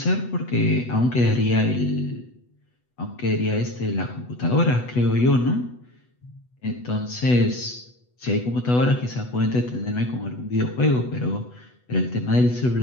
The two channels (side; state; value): right; late; 8.1 ms